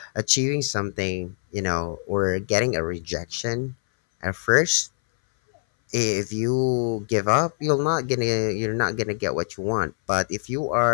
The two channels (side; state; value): right; silent; 61 dB below the other